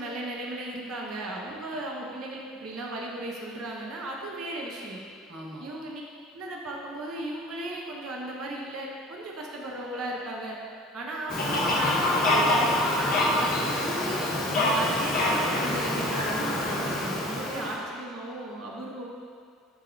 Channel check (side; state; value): both; normal; correlation 0.42